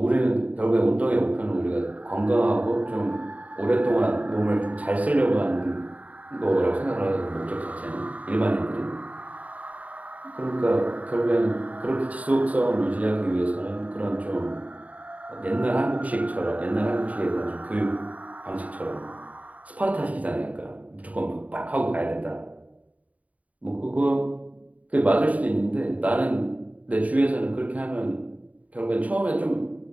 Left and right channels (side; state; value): left; late; 0.070 ms